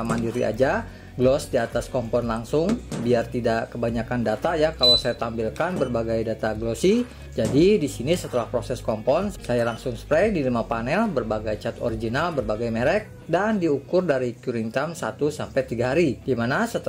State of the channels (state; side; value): identical; both; correlation 1.00